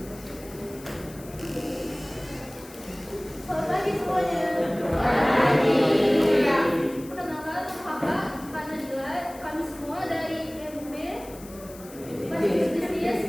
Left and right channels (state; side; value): noise; left; hiss, 19 dB below the sound